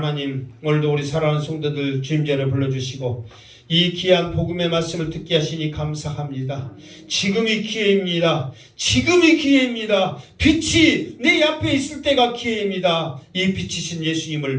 오늘도 우리 사랑하는 성도들 주님 전에 불러주시고 이 귀한 복음의 말씀을 듣게 하시니 감사합니다. 지금이 기회입니다. 지금이 기회입니다. 빛이 내 앞에 있을 때가 기회입니다. 이 빛이신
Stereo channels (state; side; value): identical; both; correlation 1.00